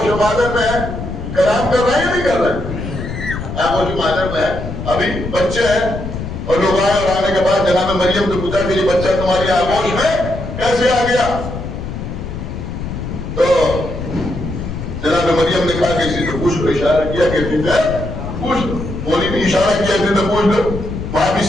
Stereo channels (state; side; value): noise; left; rumble, 7 dB below the sound